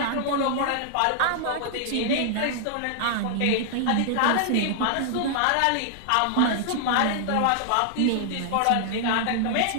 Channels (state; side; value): different; both; correlation 0.00